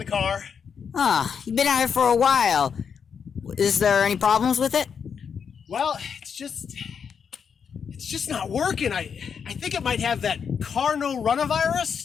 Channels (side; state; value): right; quieter; 6.8 dB